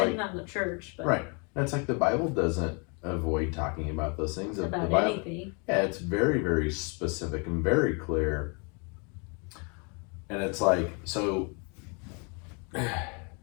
on the church. But right. And it's like the Bible doesn't avoid talking about those things. About the Bible, anything. Yeah, it's very, very specific and very clear. And it's like, so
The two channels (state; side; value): quieter; right; 34.7 dB